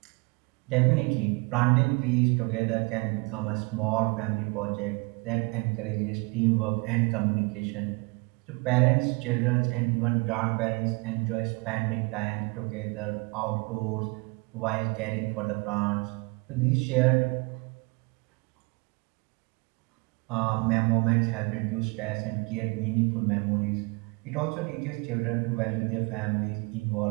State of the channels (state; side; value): quieter; left; 28.3 dB